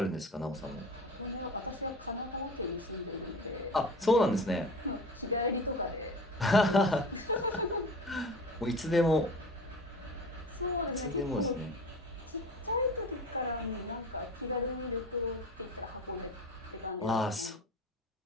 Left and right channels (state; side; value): normal; both; correlation 0.36